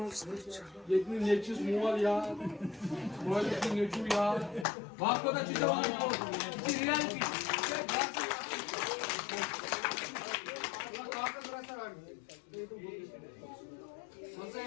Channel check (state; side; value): drops out; right; at 4.7 s